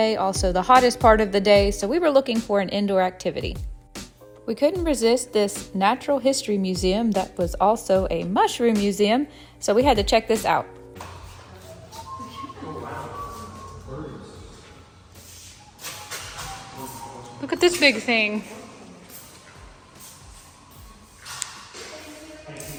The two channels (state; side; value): identical; both; correlation 1.00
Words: also the hottest part of the day, so we were looking for an indoor activity. We couldn't resist this natural history museum that was also a mushroom museum, so we had to check this out. Look at this big thing.